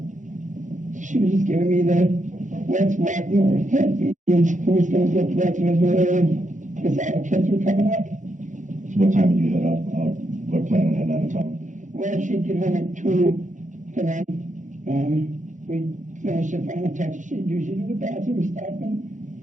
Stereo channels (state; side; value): late; left; 0.36 ms